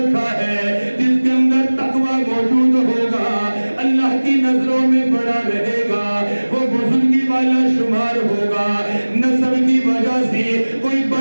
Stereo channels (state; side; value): inverted; both; correlation -1.00